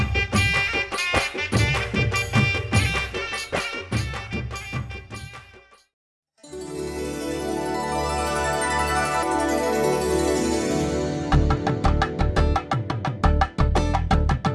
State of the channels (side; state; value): both; identical; correlation 1.00